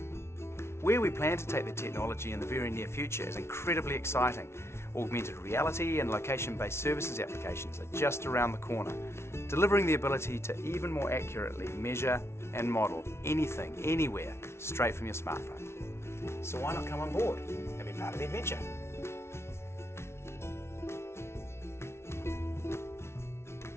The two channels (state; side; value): late; right; 0.13 ms